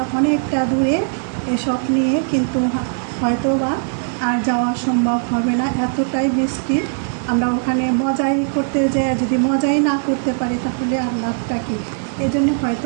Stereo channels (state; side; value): silent; left; digital silence